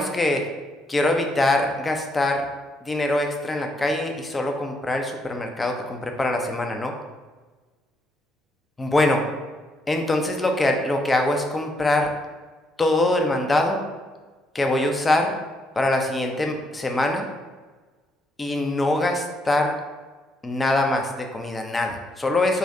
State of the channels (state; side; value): normal; both; correlation 0.75